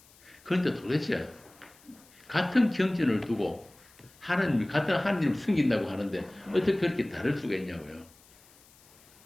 그런데 도대체 같은 경전을 두고 같은 하나님을 섬긴다고 하는데 어떻게 그렇게 다를 수가 있냐고요.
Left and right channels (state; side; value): noise; left; hiss, 27 dB below the sound